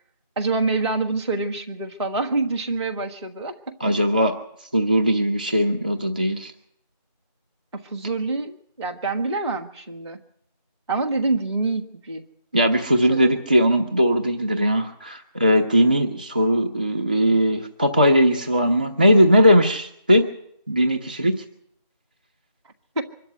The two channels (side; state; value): both; inverted; correlation -0.78